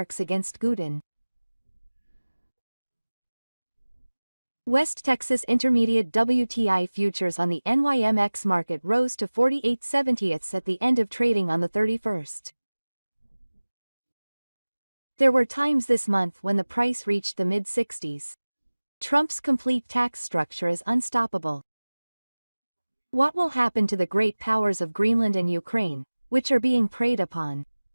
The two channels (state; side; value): inverted; both; correlation -1.00